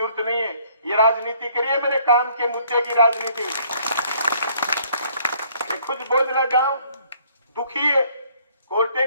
नहीं है, ये राजनीति करिए, मेरे काम के मुद्दे की राजनीति। खुद बोझला गांव दुखी है, कोर्टे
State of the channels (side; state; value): both; inverted; correlation -0.62